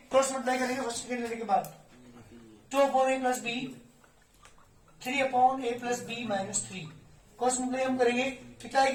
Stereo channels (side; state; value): both; identical; correlation 1.00